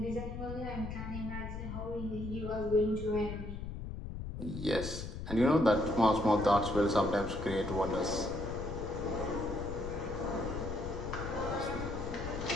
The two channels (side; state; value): left; noise; rumble, 7 dB below the sound